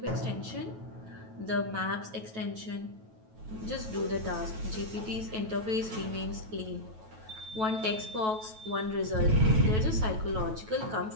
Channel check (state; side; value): late; left; 9.2 ms